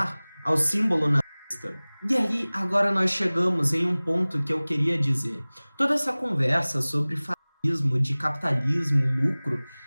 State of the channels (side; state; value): both; inverted; correlation -1.00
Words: ao símbolo nazista. E aí, agora nós chegamos em um ponto que eu queria dizer. Toda essa conversa sobre de capitalismo, lucro,